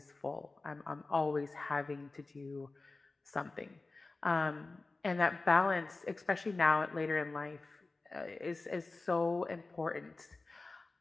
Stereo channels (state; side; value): quieter; right; 3.4 dB